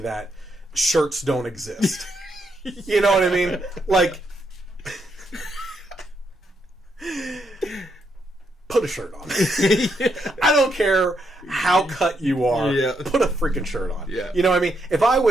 shirts don't exist. You know what I mean? Like, put a shirt on. I don't care how cut you are. Yeah. Put a freaking shirt on. Yeah. You know what I mean? If I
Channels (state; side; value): normal; both; correlation 0.78